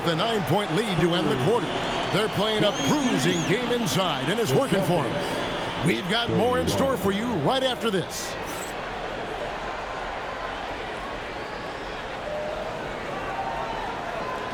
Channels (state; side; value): identical; both; correlation 1.00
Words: the 9-point lead to end the quarter. They're playing a bruising game inside, and it's working for them. We've got more in store for you right after this.